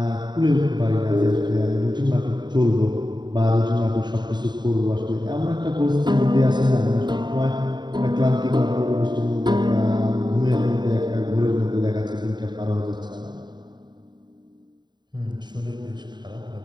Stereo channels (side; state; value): left; late; 0.21 ms